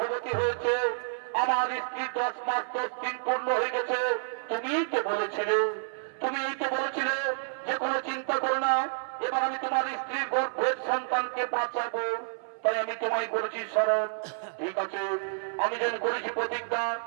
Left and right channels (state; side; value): silent; left; 58 dB below the other